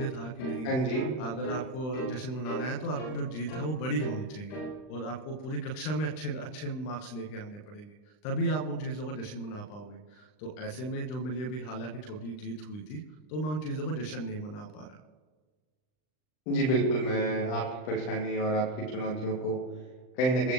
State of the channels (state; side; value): late; right; 39 ms